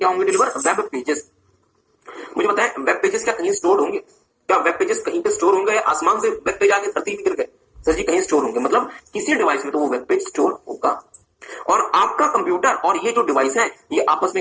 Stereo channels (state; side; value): identical; both; correlation 1.00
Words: होंगे डिलीवर? Web pages. मुझे बताएं, वेब पेजेस क्या कहीं स्टोर होंगे? क्या वेब पेजेस कहीं पे स्टोर होंगे या आसमान से वेब पेज आके धरती में गिर गए? सर जी, कहीं स्टोर होंगे। मतलब किसी डिवाइस में तो वो वेब पेज स्टोर होगा। और आपका कंप्यूटर और ये जो डिवाइस है ये आपस